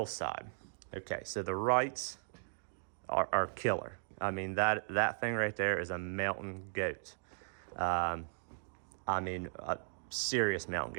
Okay, so the Wrights are killer. That thing right there is a mountain goat. A serious mountain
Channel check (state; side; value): silent; left; digital silence